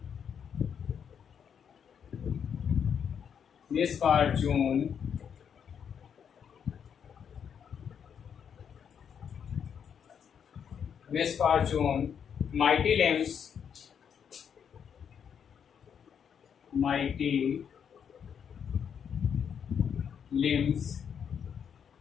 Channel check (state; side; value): quieter; right; 7.7 dB